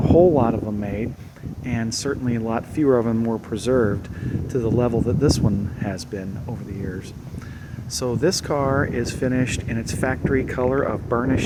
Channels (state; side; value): identical; both; correlation 1.00